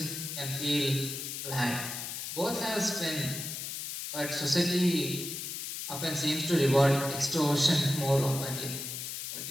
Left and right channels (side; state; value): left; noise; hiss, 6 dB below the sound